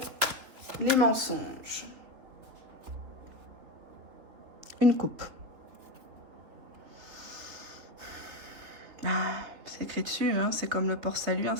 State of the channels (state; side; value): late; left; 3.6 ms